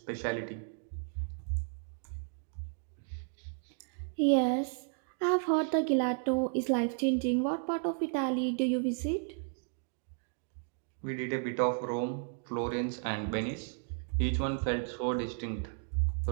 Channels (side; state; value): left; silent; 55 dB below the other